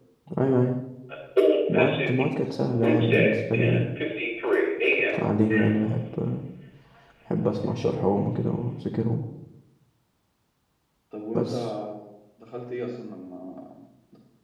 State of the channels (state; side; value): identical; both; correlation 1.00